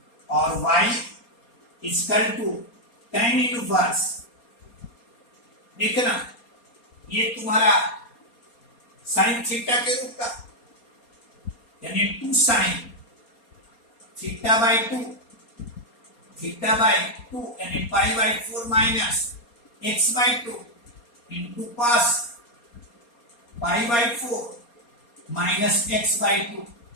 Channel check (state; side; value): late; right; 4.3 ms